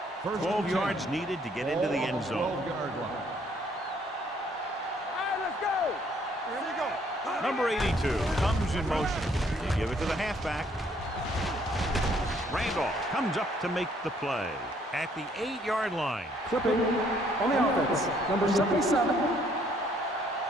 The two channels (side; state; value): both; normal; correlation 0.65